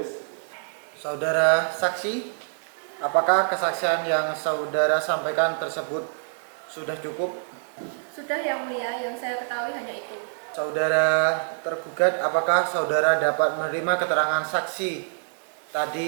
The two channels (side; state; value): left; silent; digital silence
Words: Saudara saksi, apakah kesaksian yang saudara sampaikan tersebut sudah cukup? Sudah yang mulia, yang saya ketahui hanya itu. Saudara tergugat, apakah saudara dapat menerima keterangan saksi